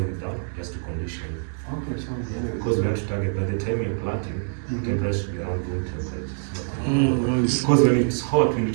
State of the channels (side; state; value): left; silent; 62 dB below the other